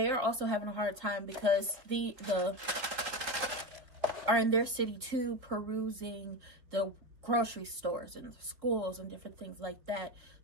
are also having a hard time because the are in their city too, perusing the grocery stores and schools and different things like that.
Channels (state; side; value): late; left; 4.0 ms